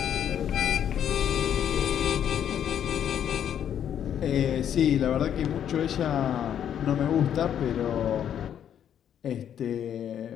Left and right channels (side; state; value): right; quieter; 9.5 dB